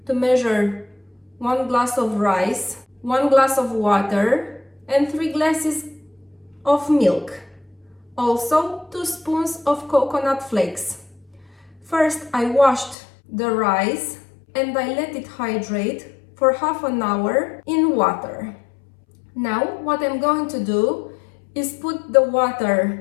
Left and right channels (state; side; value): drops out; right; at 13.0 s